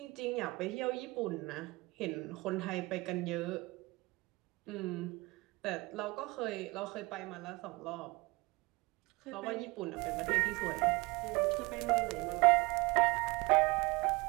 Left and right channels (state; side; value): quieter; left; 23.9 dB